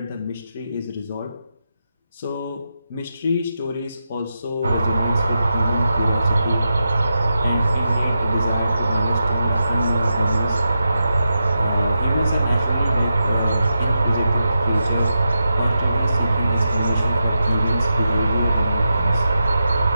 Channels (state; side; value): inverted; both; correlation -0.88